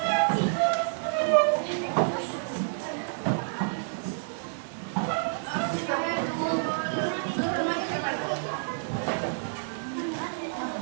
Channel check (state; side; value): silent; left; 56 dB below the other